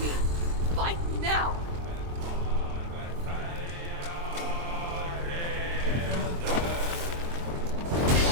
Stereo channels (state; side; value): late; left; 23 ms